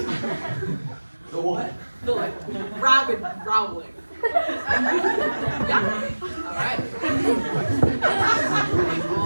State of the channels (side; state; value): both; inverted; correlation -1.00